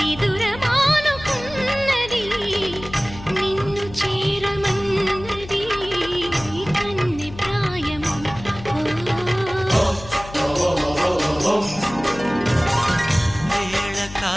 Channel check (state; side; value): noise; left; hum, 15 dB below the sound